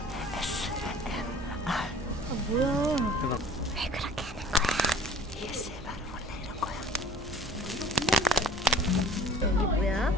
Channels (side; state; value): both; normal; correlation 0.48